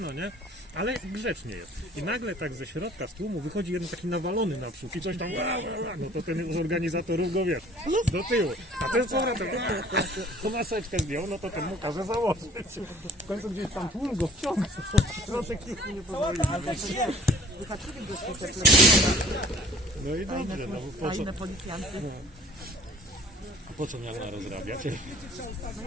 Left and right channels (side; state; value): both; normal; correlation 0.51